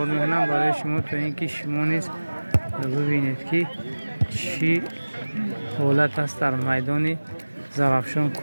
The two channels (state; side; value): inverted; both; correlation -1.00